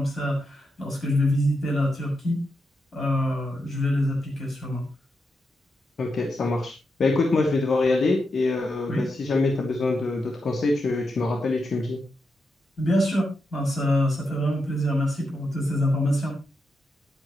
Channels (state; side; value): normal; both; correlation 0.85